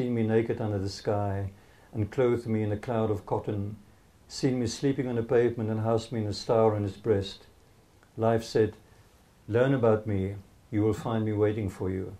me naked under the sky and clothed me in a cloud of cotton, seen me sleeping on the pavement and housed me in a star on its breast. Life said, learn about me, you will find me waiting for you.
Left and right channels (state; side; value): identical; both; correlation 1.00